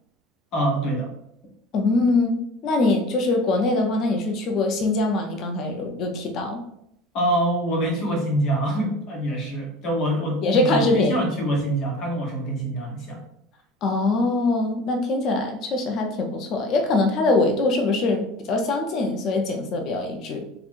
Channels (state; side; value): normal; both; correlation 0.41